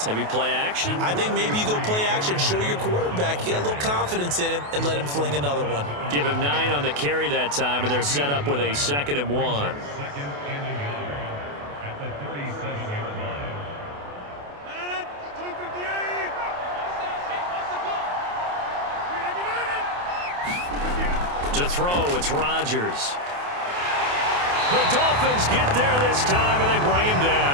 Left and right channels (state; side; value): late; left; 28 ms